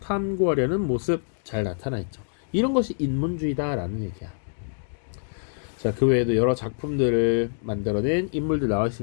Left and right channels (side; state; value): right; silent; digital silence